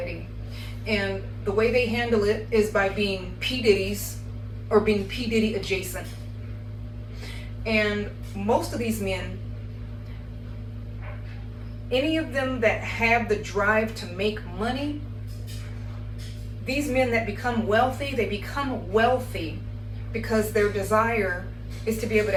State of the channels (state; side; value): identical; both; correlation 1.00